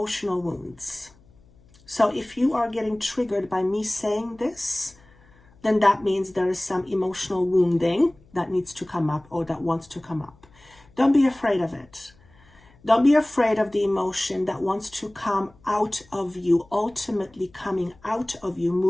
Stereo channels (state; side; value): noise; left; hum, 28 dB below the sound